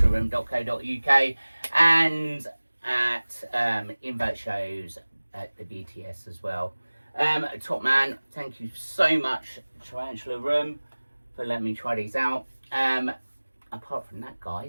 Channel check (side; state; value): both; inverted; correlation -1.00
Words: and at invert shows at the BTS as well. Top man, thank you so much, Tarantula Room, for letting me try these out. Apart from that,